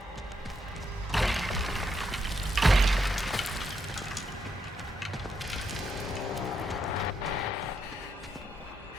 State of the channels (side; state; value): both; normal; correlation 0.79